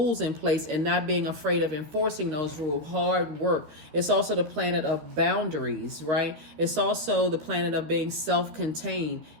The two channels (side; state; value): left; late; 13 ms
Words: in place and not being afraid of enforcing those rules, hard work. It's also the planet of boundaries, right? It's also the planet of being self-contained,